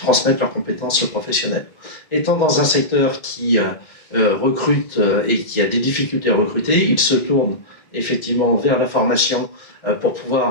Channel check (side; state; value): right; late; 1.4 ms